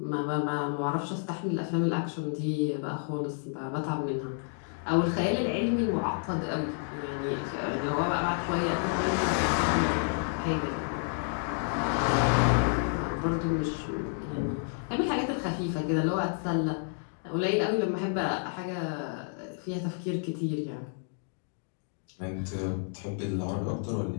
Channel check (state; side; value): silent; right; 58 dB below the other